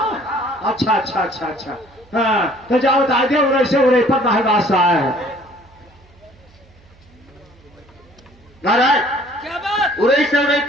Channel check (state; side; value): noise; right; hum, 28 dB below the sound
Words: अच्छा अच्छा अच्छा अच्छा, हाँ तो जाओ बता दे, उरे से उरे पर महबास आया है। महाराज क्या बात? उड़ई से उड़ई